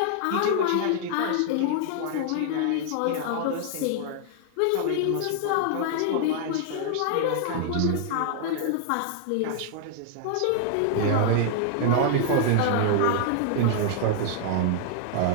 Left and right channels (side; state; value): both; different; correlation 0.00